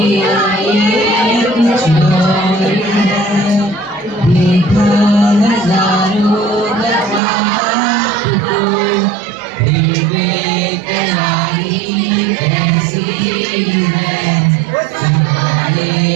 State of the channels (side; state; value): left; drops out; at 7.2 s